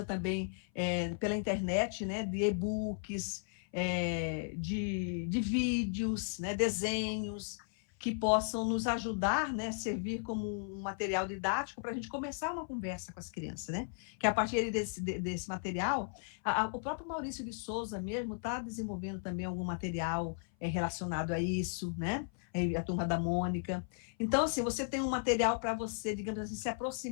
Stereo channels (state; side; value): silent; right; 54 dB below the other